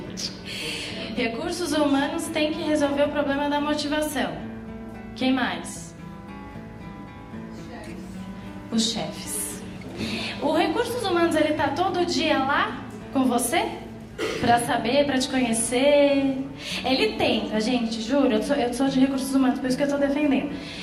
Recursos humanos têm que resolver o problema da motivação. Quem mais? Os chefes. O Recursos Humanos, ele tá todo dia lá com você? Pra saber, pra te conhecer. Ele tenta, gente, juro, eu sou de Recursos Humanos, por isso que eu tô defendendo.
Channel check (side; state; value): both; identical; correlation 1.00